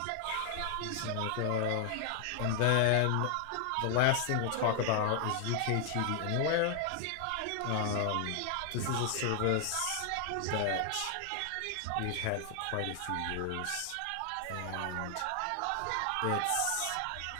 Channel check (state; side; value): different; both; correlation 0.00